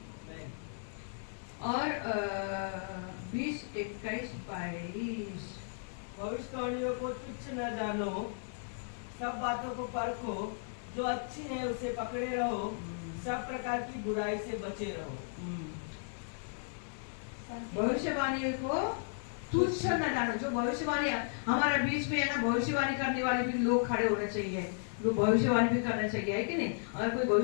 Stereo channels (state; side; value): silent; right; 55 dB below the other